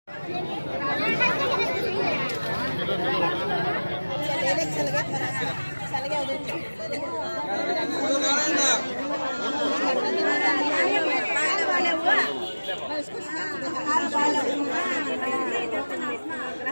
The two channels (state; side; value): inverted; both; correlation -1.00